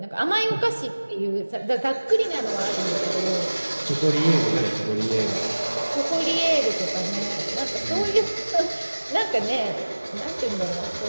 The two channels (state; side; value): inverted; both; correlation -1.00